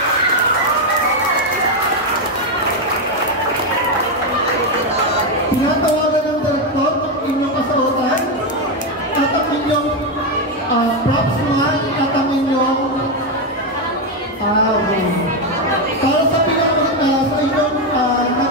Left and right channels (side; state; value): both; normal; correlation 0.07